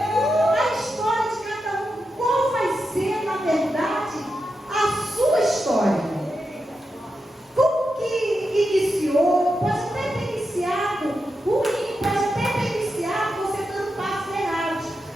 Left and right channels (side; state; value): both; normal; correlation 0.88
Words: história de cada um. Qual vai ser, na verdade, a sua história? Como que iniciou? Pode até ter iniciado ruim, pode até ter iniciado você dando passos errados.